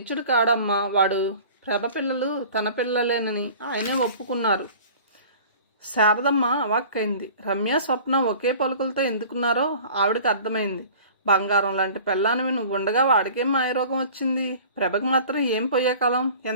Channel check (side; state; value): both; inverted; correlation -0.44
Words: కాడమ్మా వాడు. ప్రభ పిల్లలు తన పిల్లలేనని ఆయనే ఒప్పుకున్నారు. శారదమ్మ అవాక్కైంది. రమ్య స్వప్న ఒకే పలుకులతో ఎందుకున్నారో ఆవిడకి అర్థమైంది. బంగారం లాంటి పెళ్ళానివి నువ్వు ఉండగా వాడికేం మాయరోగం వచ్చింది? ప్రభకు మాత్రం ఏం పోయే కాలం?